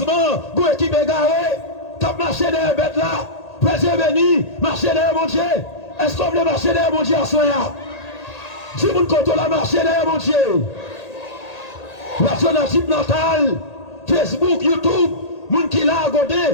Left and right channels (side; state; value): right; late; 1.8 ms